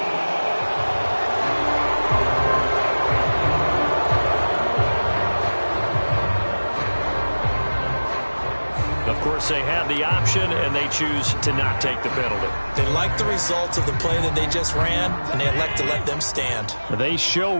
Of course, they have the option, and they choose to not take the penalty. They like the results of the play that they just ran, and they elect to let them stand. They show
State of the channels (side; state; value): both; inverted; correlation -1.00